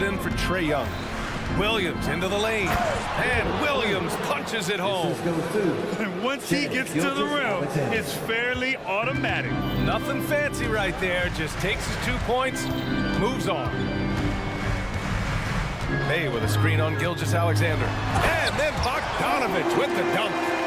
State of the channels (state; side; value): identical; both; correlation 1.00